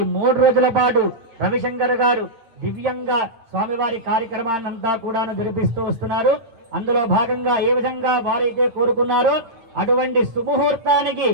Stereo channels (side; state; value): left; late; 8.7 ms